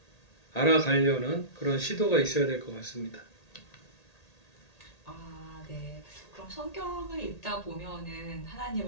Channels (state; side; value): late; right; 1.8 ms